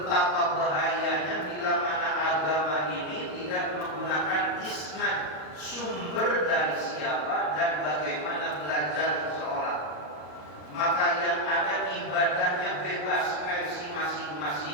bahayanya bila mana agama ini tidak menggunakan isnad, sumber dari siapa dan bagaimana belajar seseorang. Maka yang ada ibadahnya bebas versi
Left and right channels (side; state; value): right; late; 33 ms